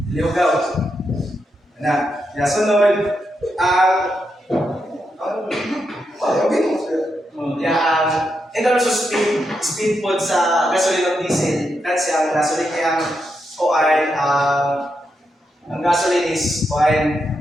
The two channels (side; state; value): both; normal; correlation 0.84